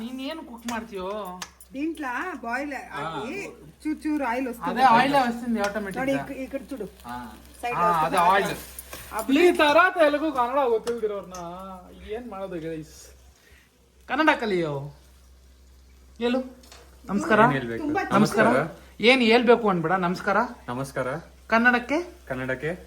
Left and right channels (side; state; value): both; identical; correlation 1.00